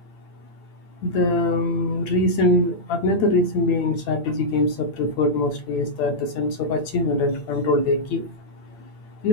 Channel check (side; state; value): right; late; 8.8 ms